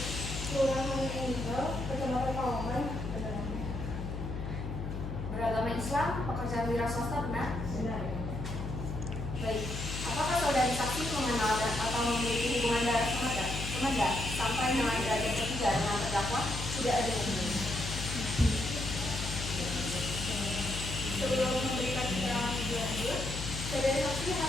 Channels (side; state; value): left; noise; hum, 5 dB below the sound